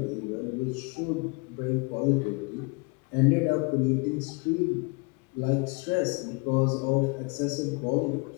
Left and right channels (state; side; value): quieter; right; 30.5 dB